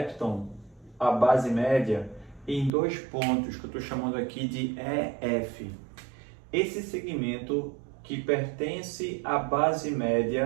a base média em dois pontos que eu estou chamando aqui de EF. Esse segmento que pertence à base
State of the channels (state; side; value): drops out; left; at 2.7 s